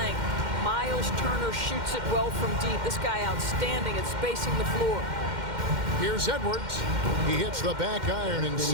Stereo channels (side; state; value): left; late; 2.1 ms